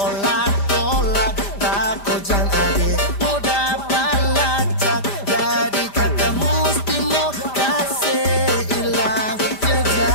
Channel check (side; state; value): right; late; 5.0 ms